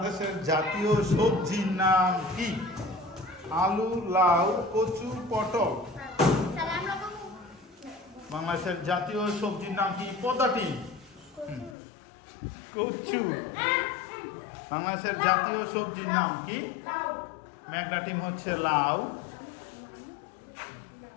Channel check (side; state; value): right; drops out; at 11.8 s